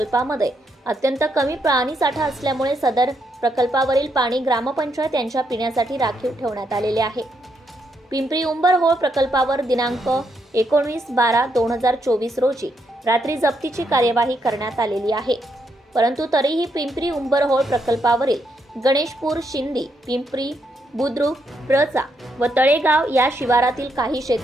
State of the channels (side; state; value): both; normal; correlation 0.78